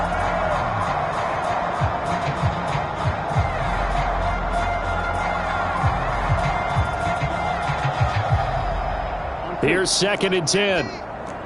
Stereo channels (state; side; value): identical; both; correlation 1.00